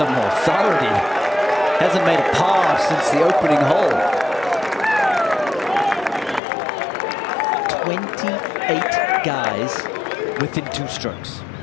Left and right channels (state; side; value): drops out; right; at 6.4 s